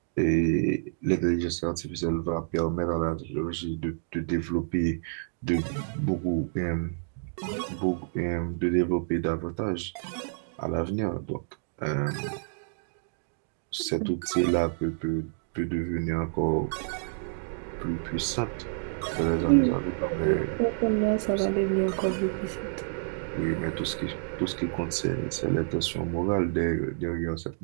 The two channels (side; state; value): left; silent; digital silence